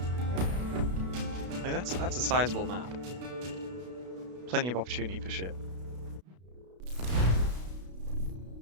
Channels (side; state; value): left; late; 33 ms